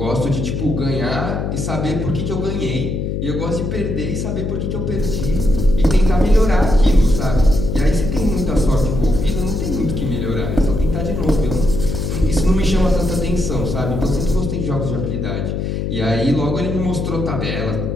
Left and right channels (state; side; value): noise; left; hum, 2 dB below the sound